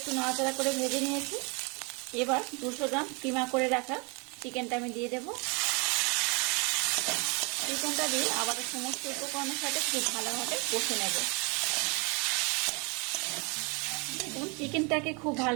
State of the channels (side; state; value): left; quieter; 31.3 dB